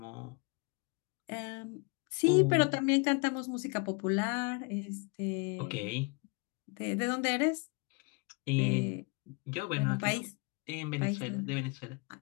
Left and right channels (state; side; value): quieter; right; 30.4 dB